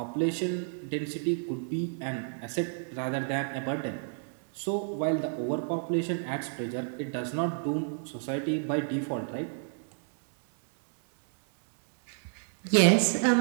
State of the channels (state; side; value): silent; left; digital silence